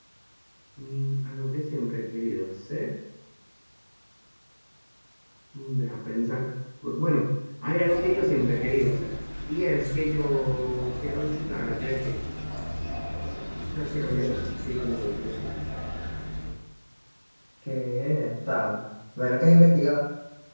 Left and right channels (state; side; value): inverted; both; correlation -1.00